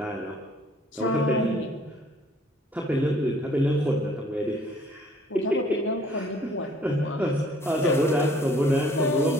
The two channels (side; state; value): both; normal; correlation 0.58